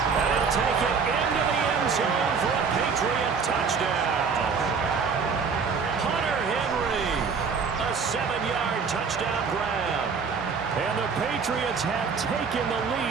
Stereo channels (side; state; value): left; quieter; 5.5 dB